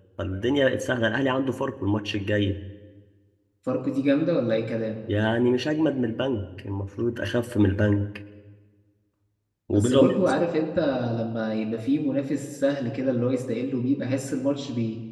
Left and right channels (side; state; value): both; identical; correlation 1.00